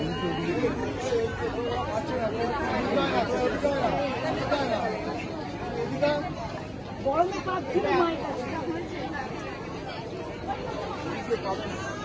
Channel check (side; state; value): both; identical; correlation 1.00